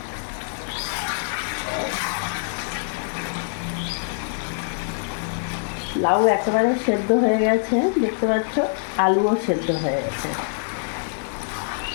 লাউ একেবারে সেদ্ধ হয়ে গেছে, দেখতে পাচ্ছ, আলুও সেদ্ধ হয়ে গেছে।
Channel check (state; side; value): silent; right; 62 dB below the other